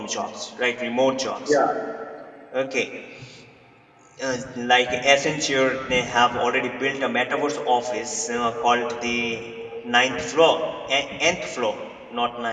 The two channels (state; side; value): identical; both; correlation 1.00